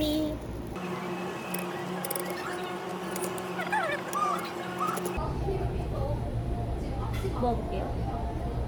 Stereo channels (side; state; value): both; identical; correlation 1.00